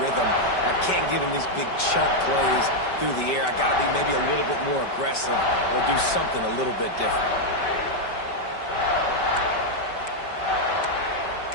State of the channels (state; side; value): late; right; 5.2 ms